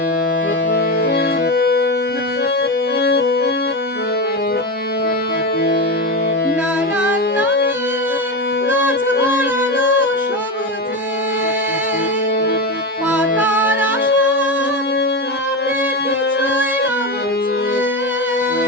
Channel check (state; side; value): normal; both; correlation 0.17